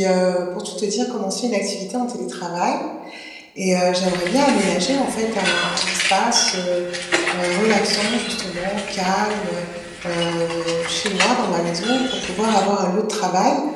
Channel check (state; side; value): identical; both; correlation 1.00